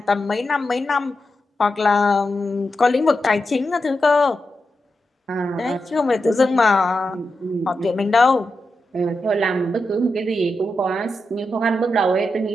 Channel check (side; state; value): both; normal; correlation 0.88